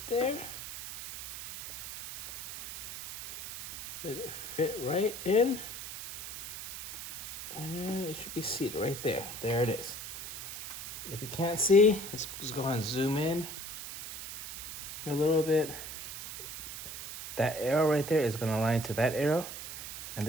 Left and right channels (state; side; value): noise; right; hiss, 9 dB below the sound